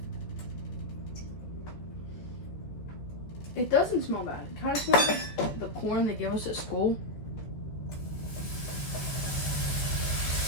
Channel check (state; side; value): late; right; 14 ms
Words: It doesn't smell bad. It kind of smells like the corn they give us at school.